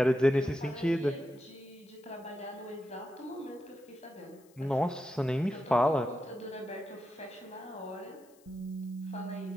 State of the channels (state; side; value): noise; left; hiss, 29 dB below the sound